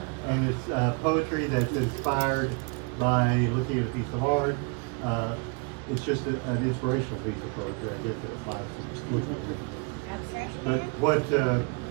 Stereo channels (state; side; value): quieter; left; 32.9 dB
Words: And it's poetry that's inspired by looking at a piece of art. It's just an inspirational piece of poetry, I guess it applies to. But what